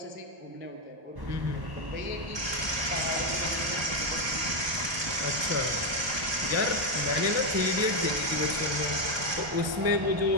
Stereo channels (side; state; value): left; late; 1.2 ms